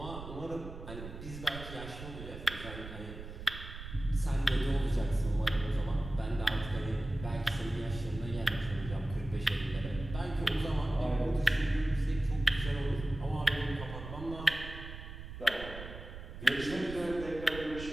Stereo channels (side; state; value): right; noise; rumble, 11 dB below the sound